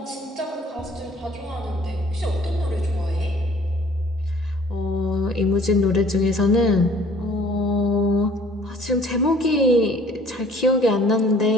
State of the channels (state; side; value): normal; both; correlation 0.54